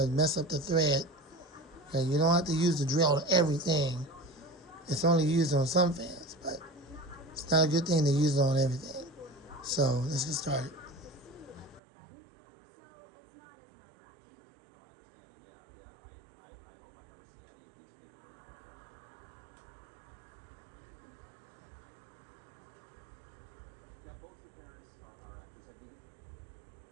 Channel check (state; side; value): drops out; left; at 11.8 s